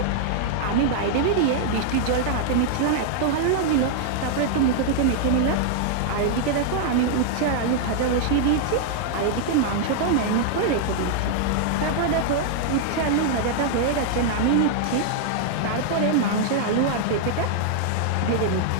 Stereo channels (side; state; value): both; different; correlation 0.00